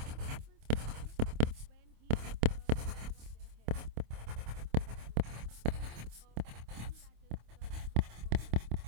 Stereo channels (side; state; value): left; late; 26 ms